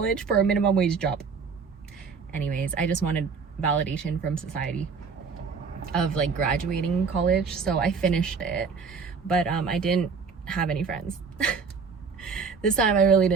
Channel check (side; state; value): left; quieter; 5.4 dB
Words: for a minimum wage job? Anyways, I just wanted validation from society of like graduating college, so I finished it, but I didn't have any friends. This time I really